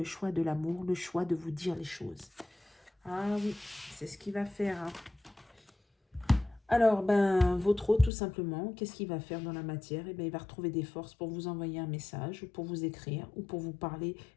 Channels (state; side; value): drops out; right; at 8.1 s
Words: choix de l'amour, le choix de vous dire les choses. Ah oui, c'est ce qu'il va faire. Hein. Alors, ben, votre hôte, tout simplement, qu'est-ce qu'il va faire dans la matière? Eh bien, il va retrouver des forces pour vous envoyer un message, ou pour vous écrire, ou pour vous parler